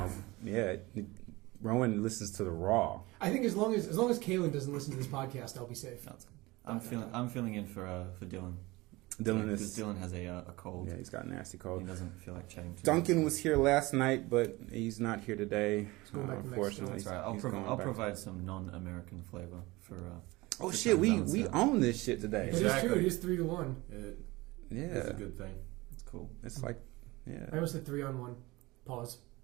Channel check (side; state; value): left; quieter; 21.6 dB